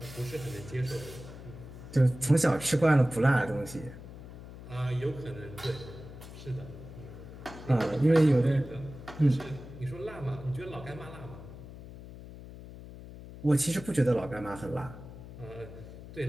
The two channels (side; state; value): left; noise; hum, 14 dB below the sound